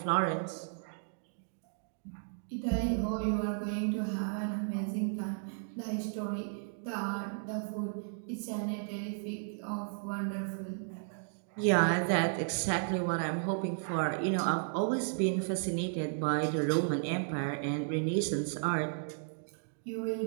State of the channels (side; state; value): left; silent; digital silence